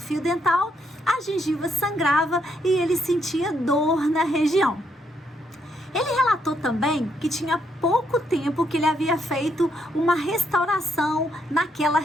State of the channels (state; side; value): normal; both; correlation 0.75